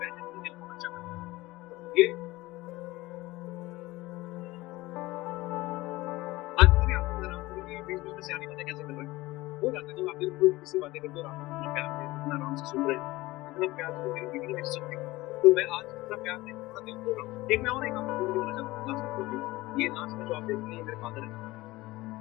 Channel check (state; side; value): quieter; right; 19.5 dB